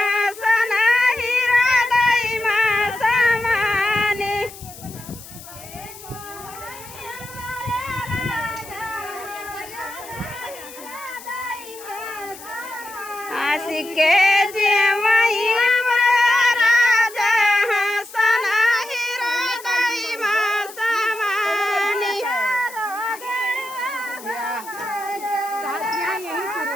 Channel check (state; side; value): noise; left; hiss, 17 dB below the sound